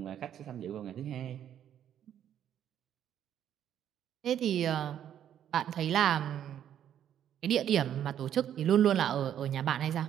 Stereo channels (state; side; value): quieter; left; 10.1 dB